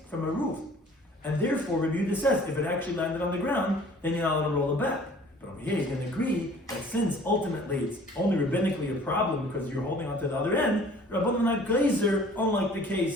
from a roof. And therefore, Rabbi Yehuda says, if it actually landed on the ground, then you're not allowed to roll it back. But over here, you can agree that since ultimately it's only rabbinically a problem because you're holding on to the other end, Rabbanan not glazer, unlike the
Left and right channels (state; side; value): normal; both; correlation 0.51